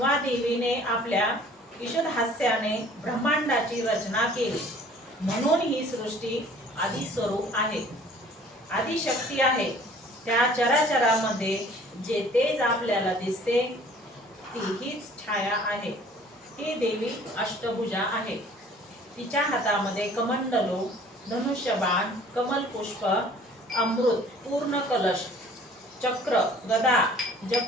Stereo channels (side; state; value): both; normal; correlation 0.52